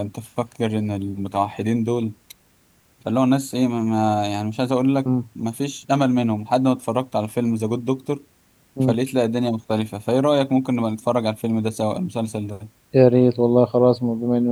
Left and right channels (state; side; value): identical; both; correlation 1.00